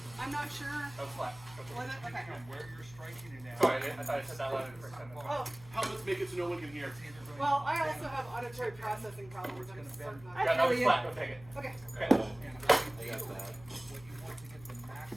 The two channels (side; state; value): left; noise; hum, 20 dB below the sound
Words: I'm not sure. That was flat. Was it? Okay. Sorry, I thought I said that loud for a second. Oh, Helmets make it so no one can hear. well, I also have auditory processing problems. I'm certain of I Yeah, it. that feel was you. flat. Go take it. Okay. Okay.